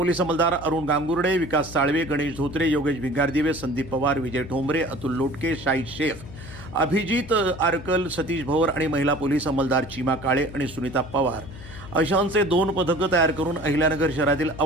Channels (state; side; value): noise; left; hum, 15 dB below the sound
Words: अंमलदार अरुण गांगुर्डे, विकास साळवे, गणेश धोत्रे, योगेश भिंगारदिवे, संदीप पवार, विजय ठोंबरे, अतुल लोटके, शाहीद शेख, अभिजित आरकल, सतीश भवर आणि महिला पोलीस अंमलदार चीमा काळे आणि सुनीता पवार अशांचे 2 पथकं तयार करून अहिल्यानगर शहरातील